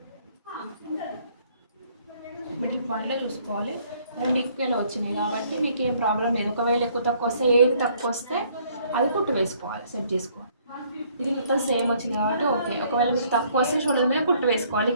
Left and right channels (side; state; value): both; inverted; correlation -0.63